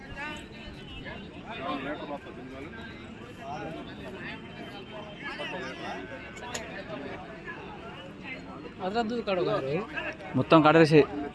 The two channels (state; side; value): identical; both; correlation 1.00